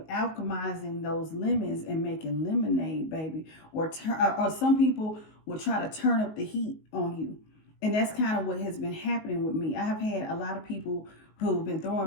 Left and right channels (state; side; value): late; right; 19 ms